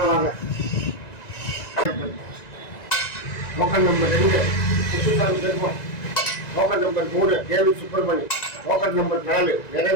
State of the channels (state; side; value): late; right; 1.9 ms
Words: வாங்க. Token number 2 Kuppusamy Perumal, token number 3 David Subramani, token number 4